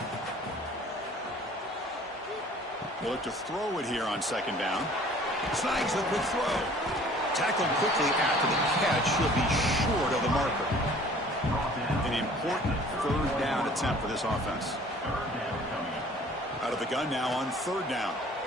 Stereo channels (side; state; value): both; normal; correlation 0.51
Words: We'll look to throw it here on 2nd down. Snags the quick throw. Tackled quickly after the catch. He'll be short of the marker. An important 3rd down attempt for this offense. Out of the gun now on 3rd down.